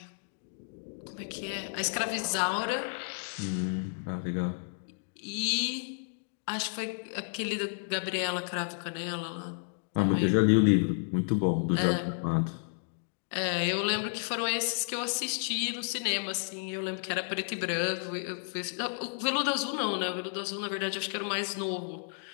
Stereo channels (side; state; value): right; silent; digital silence